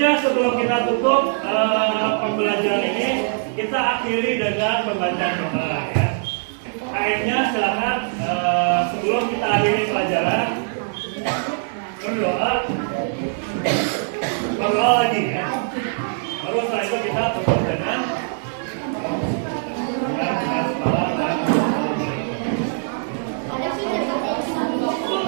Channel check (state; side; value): silent; left; digital silence